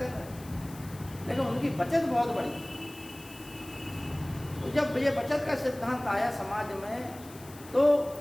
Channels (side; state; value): left; noise; hiss, 19 dB below the sound